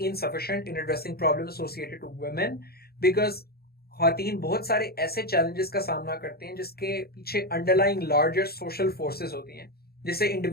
in addressing problems associated to women because ख़वातीन बहुत सारे ऐसे challenges का सामना करते हैं जिसके पीछे underlying larger social forces होती हैं, जिससे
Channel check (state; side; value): late; right; 0.45 ms